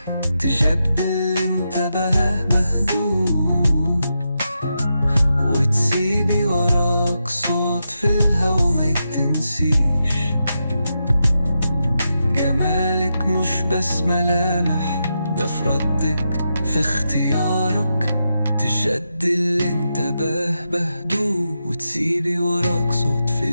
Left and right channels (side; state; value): both; inverted; correlation -0.86